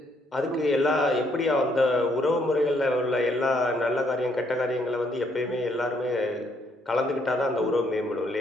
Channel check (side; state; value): both; normal; correlation 0.70